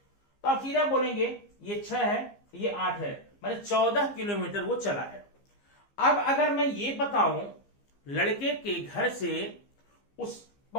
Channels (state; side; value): late; right; 15 ms